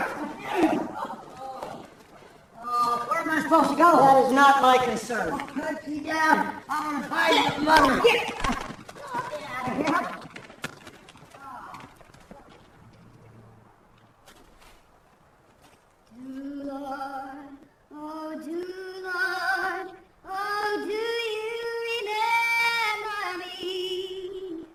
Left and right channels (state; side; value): identical; both; correlation 1.00